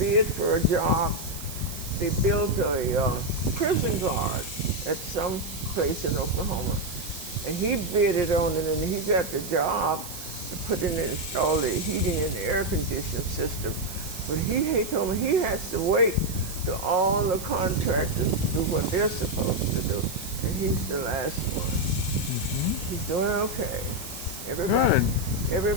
for a job they built a prison guard at some place in Oklahoma. And he bidded on it, and he got the job to put in and install the heating and the air conditioning system. But he told me he has to wait till all the contractors do what they're supposed to do. And he's the last one. He's doing okay.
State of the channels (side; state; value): right; noise; hiss, 11 dB below the sound